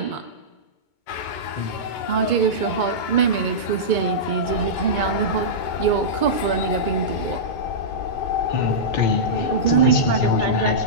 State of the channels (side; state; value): right; late; 2.2 ms